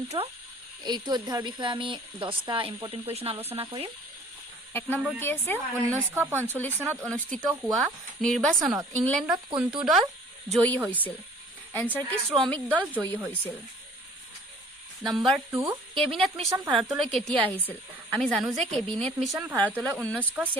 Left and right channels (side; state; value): both; normal; correlation 0.52